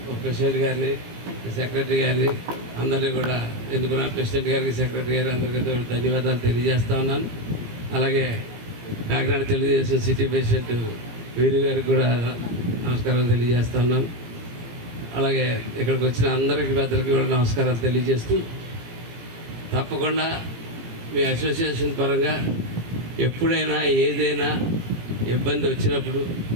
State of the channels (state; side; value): late; left; 17 ms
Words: ఒక ప్రెసిడెంట్ గారిని, సెక్రటరీ గారిని అందరినీ కూడా ఎన్నుకున్న ప్రెసిడెంట్ గారికి, సెక్రటరీ గారికి అందరికీ ధన్యవాదాలు తెలియజేస్తూ ఉన్నాను. అలాగే కాకినాడ తెలుగుదేశం సిటీ ప్రెసిడెంట్ వీరు గారికి కూడా నమస్కారాలు తెలియజేస్తూ ఉన్నాను. అలాగే ఇక్కడికి వచ్చిన అందరికీ పెద్దలకి కూడా నమస్కారాలు తెలియజేస్తూ, తప్పకుండా మీ అసోసియేషన్ పరంగా ఎప్పుడైనా ఏదైనా ఇబ్బంది వచ్చినప్పుడు